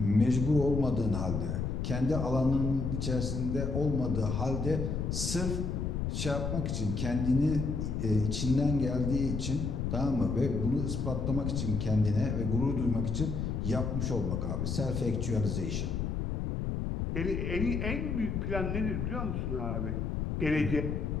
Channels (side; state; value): left; noise; rumble, 1 dB below the sound